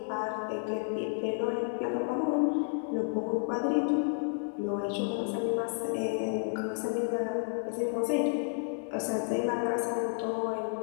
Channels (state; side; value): silent; right; 57 dB below the other